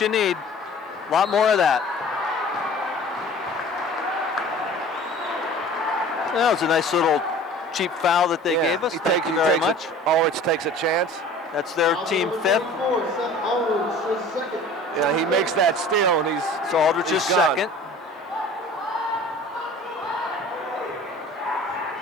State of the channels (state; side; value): normal; both; correlation 0.44